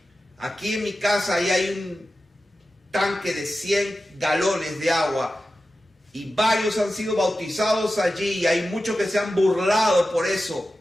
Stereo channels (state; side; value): normal; both; correlation 0.93